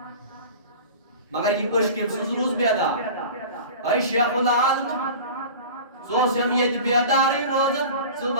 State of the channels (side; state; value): both; inverted; correlation -0.37